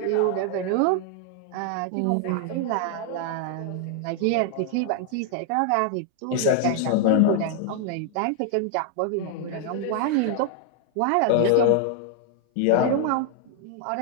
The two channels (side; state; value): both; different; correlation 0.00